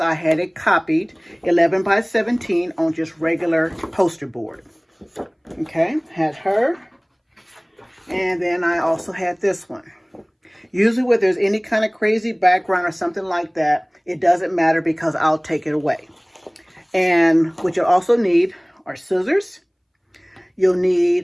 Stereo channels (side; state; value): both; identical; correlation 1.00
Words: I had it copied 11 by 17 on just regular poster board. Okay, had her, and then I also had this one. Usually when there's any kind of crazy background or something like that, it doesn't matter because I'll take it away. And what you'll also need are scissors. You'll